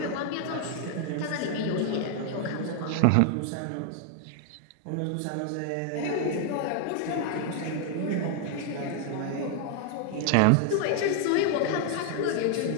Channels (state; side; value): different; both; correlation 0.00